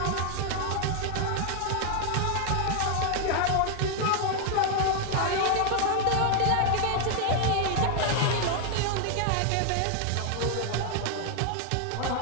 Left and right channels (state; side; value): different; both; correlation 0.00